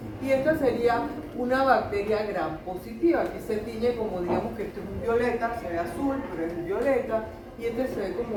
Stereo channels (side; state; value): both; identical; correlation 1.00